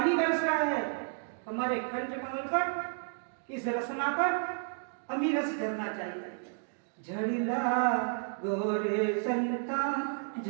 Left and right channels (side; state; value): left; silent; 56 dB below the other